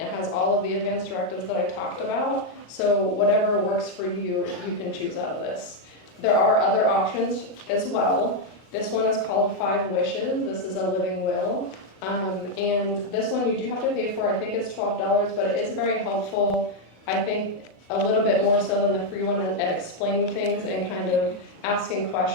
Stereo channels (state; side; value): late; right; 37 ms